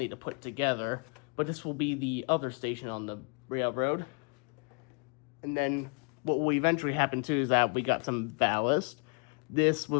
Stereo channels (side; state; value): right; quieter; 37.2 dB